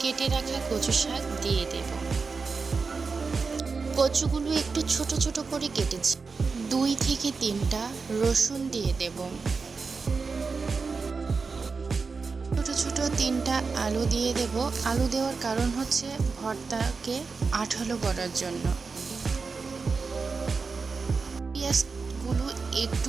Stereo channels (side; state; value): left; quieter; 4.7 dB